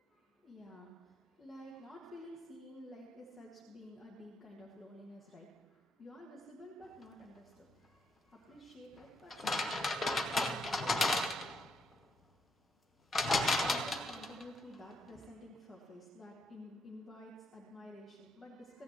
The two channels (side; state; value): both; normal; correlation 0.77